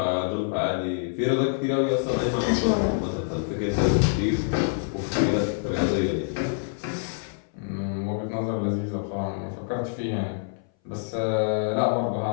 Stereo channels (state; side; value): silent; right; 59 dB below the other